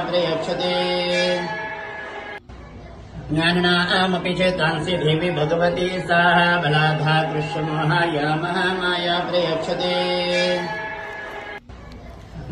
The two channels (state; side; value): identical; both; correlation 1.00